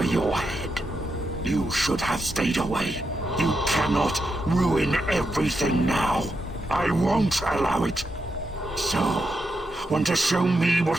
your head. You should have stayed away. You cannot ruin everything now. I won't allow it. So, want to show me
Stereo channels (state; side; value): normal; both; correlation 0.84